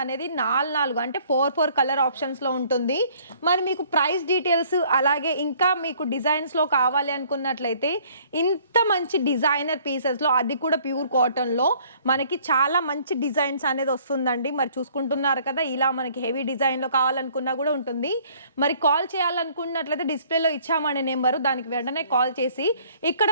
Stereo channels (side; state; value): both; inverted; correlation -0.59